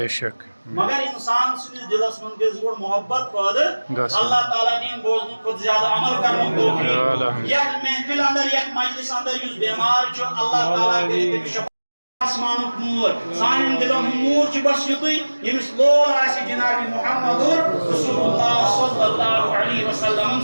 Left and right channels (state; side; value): inverted; both; correlation -1.00